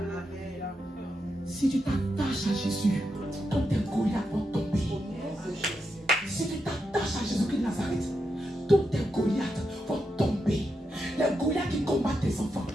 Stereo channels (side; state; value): both; normal; correlation 0.85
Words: Si tu t'attaches à Jésus, tous tes Goliaths vont tomber. Si tu t'attaches à Jésus-Christ de Nazareth, tous tes Goliaths vont tomber. Les Goliaths qui combattent tes enfants,